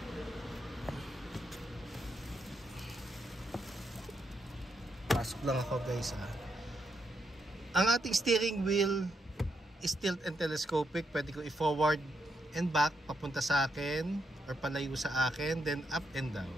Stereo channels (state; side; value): normal; both; correlation 0.80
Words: Pasok lang ako, guys, ha. Ang ating steering wheel is tilt and telescopic. Pwede ko i-forward and back papunta sa akin or palayo sa akin, then up and